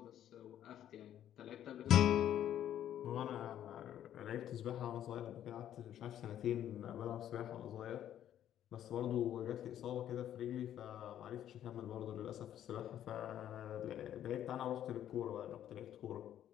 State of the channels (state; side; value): quieter; right; 11.0 dB